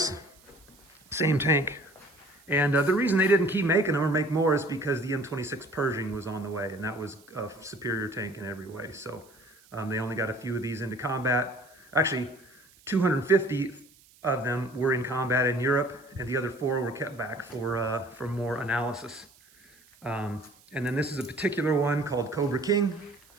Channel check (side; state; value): right; noise; hiss, 28 dB below the sound